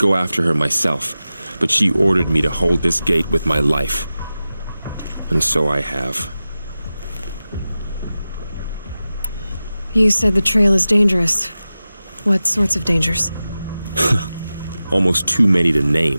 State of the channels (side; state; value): both; inverted; correlation -0.95